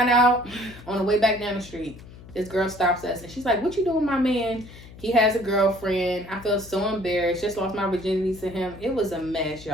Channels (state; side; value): noise; left; hum, 18 dB below the sound